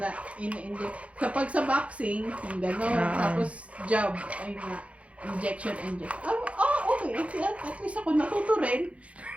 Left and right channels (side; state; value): left; late; 0.063 ms